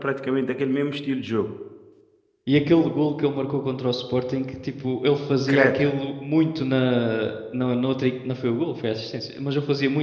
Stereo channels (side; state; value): both; identical; correlation 1.00